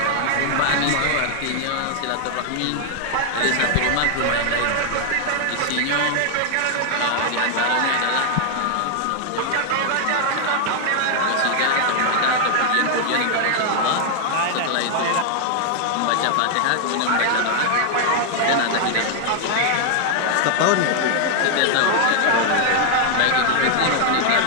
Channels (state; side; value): different; both; correlation 0.00